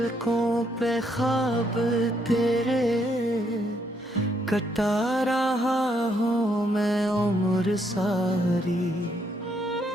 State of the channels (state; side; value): normal; both; correlation 0.73